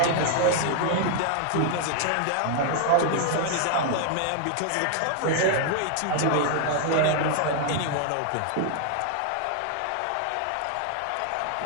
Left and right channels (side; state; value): both; different; correlation 0.00